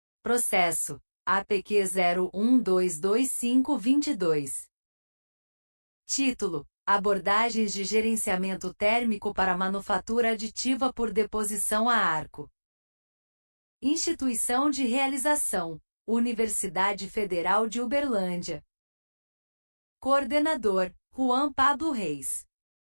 Processo APQ 01222522. Título: Abordagens de gerenciamento térmico para manufatura aditiva por deposição a arco. Instituição de realização: Universidade Federal de Uberlândia. Coordenador: Juan Pablo Reis.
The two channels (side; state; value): both; inverted; correlation -1.00